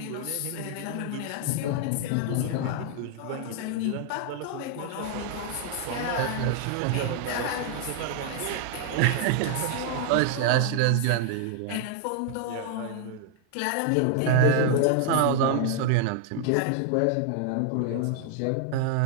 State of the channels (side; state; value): both; different; correlation 0.00